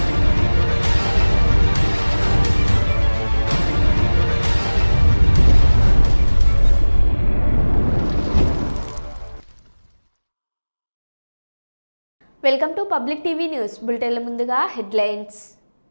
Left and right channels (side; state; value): both; inverted; correlation -1.00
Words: Welcome to public TV news బులెటిన్ల ముందుగా హెడ్లైన్స్.